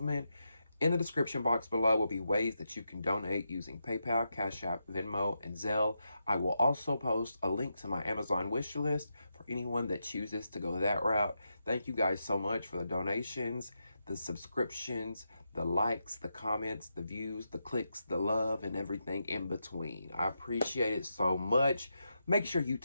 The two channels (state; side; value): inverted; both; correlation -0.85